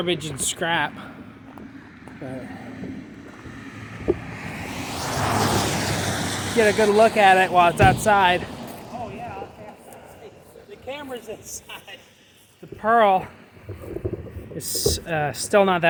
and scrap. But get a good look at it while it's outside. Oh yeah, the camera's inside. The pearl is still not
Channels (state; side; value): identical; both; correlation 1.00